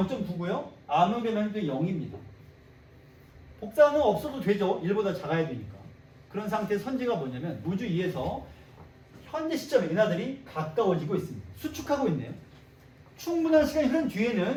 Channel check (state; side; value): identical; both; correlation 1.00